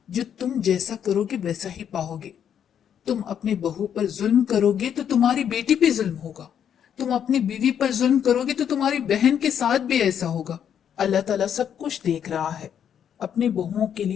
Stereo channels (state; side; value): quieter; right; 8.8 dB